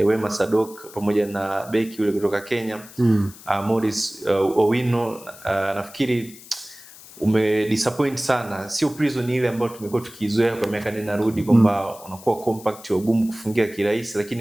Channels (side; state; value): left; noise; hiss, 19 dB below the sound